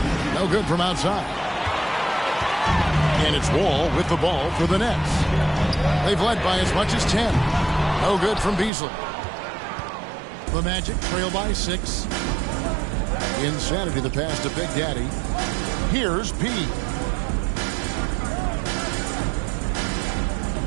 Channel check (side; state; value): left; drops out; at 8.7 s